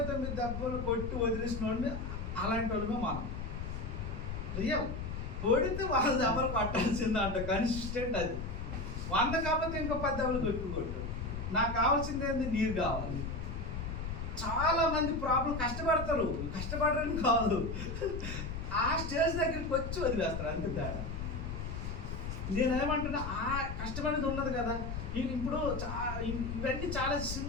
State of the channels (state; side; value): noise; left; rumble, 5 dB below the sound